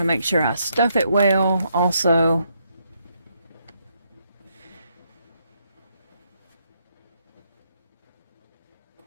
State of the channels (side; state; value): both; inverted; correlation -0.76